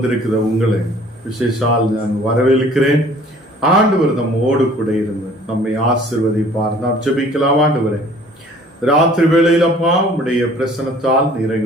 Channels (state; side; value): normal; both; correlation 0.53